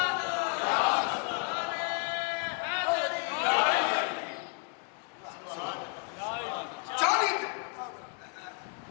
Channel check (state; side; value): quieter; right; 37.1 dB